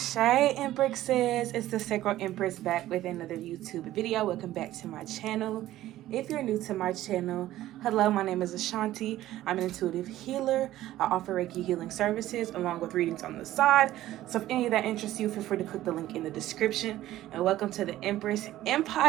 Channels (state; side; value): quieter; left; 14.5 dB